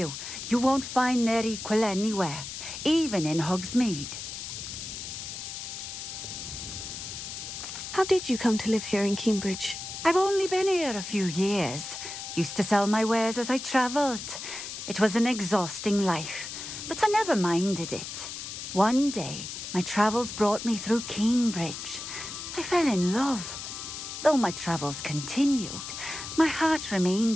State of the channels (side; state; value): left; noise; hiss, 8 dB below the sound